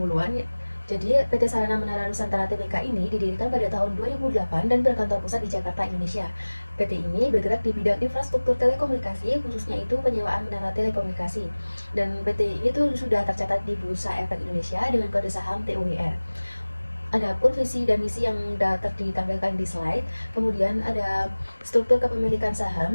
Jadi PT Sarana Menara Nusantara Tbk ini didirikan pada tahun 2008 dan berkantor pusat di Jakarta, Indonesia. PT ini bergerak di bidang infrastruktur telekomunikasi, khususnya itu penyewaan menara telekomunikasi. Dan PT ini tuh sudah tercatat di Bursa Efek Indonesia dengan kode saham TUWR. Adapun visi dan misi yang ditampilkan di slide. Kemudian ada struktur kepemilikan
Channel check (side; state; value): both; inverted; correlation -1.00